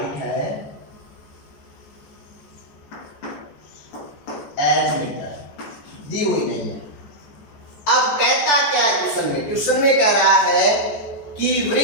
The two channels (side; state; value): right; late; 14 ms